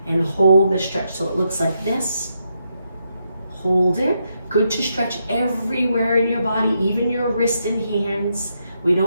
and hold the stretch. So it looks like this. Hold it. Good to stretch everywhere in your body, even your wrist and hands. We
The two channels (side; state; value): both; inverted; correlation -0.81